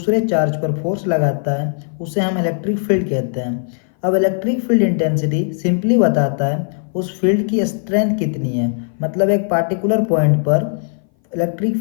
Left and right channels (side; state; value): right; silent; 59 dB below the other